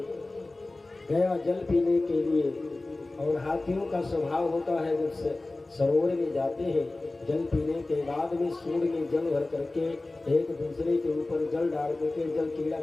गया जल पीने के लिए। और हाथियों का स्वभाव होता है, जब सरोवर में जाते हैं जल पीने के बाद में सूंड में जल भर करके एक दूसरे के ऊपर जल डाल करके जल क्रीड़ा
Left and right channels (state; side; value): quieter; right; 3.0 dB